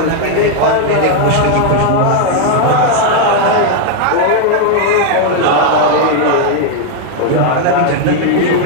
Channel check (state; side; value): different; both; correlation 0.00